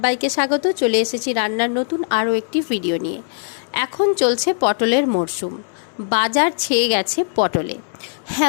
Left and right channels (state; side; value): silent; right; digital silence